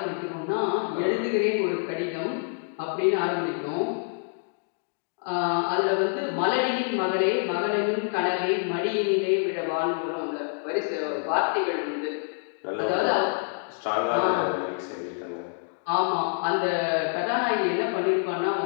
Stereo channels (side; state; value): right; silent; 60 dB below the other